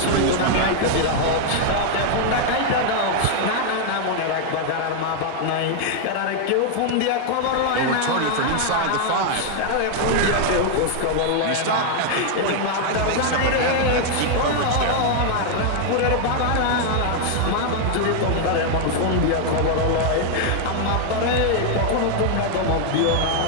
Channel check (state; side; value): different; both; correlation 0.00